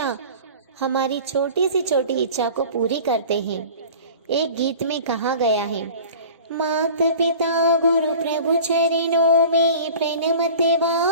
हमारी छोटी सी छोटी इच्छा को पूरी करते हैं। एक गीत में कहा गया है, मात पिता गुरु प्रभु चरणों में प्रणमते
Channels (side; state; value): both; inverted; correlation -0.41